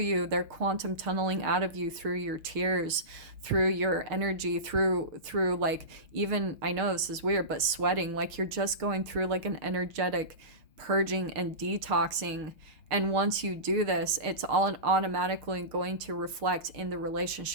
They're quantum tunneling out of you through your tears, through your energy, through like, even, I know this is weird, but sweating. Like, you're just going through like an energetic purging and detoxing. And once you do this, it's all automatically going to reflect in the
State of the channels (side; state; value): left; late; 6.6 ms